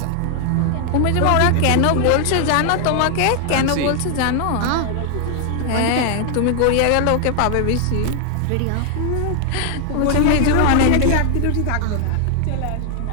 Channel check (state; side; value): different; both; correlation 0.00